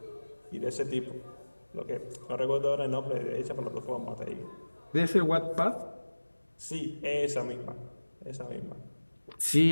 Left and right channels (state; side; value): inverted; both; correlation -1.00